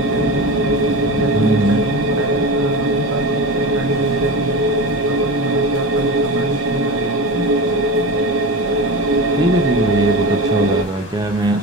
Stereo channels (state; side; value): normal; both; correlation 0.27